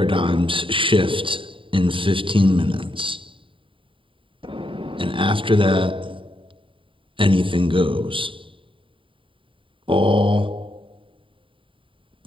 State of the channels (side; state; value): left; late; 0.25 ms